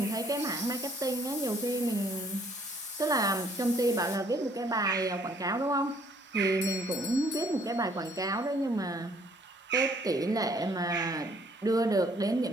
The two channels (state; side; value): normal; both; correlation 0.62